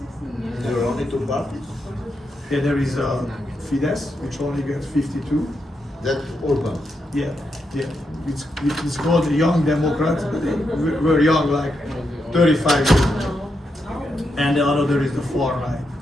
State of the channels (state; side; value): normal; both; correlation 0.83